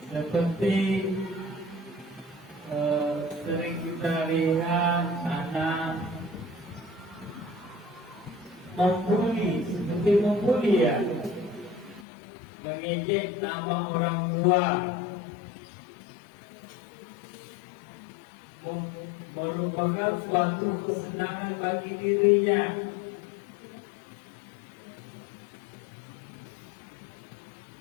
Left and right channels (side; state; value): right; drops out; at 12.1 s